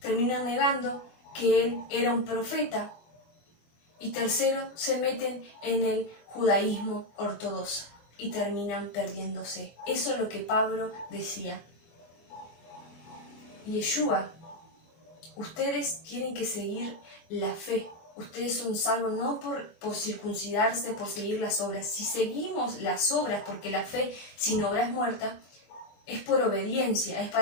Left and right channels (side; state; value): right; late; 25 ms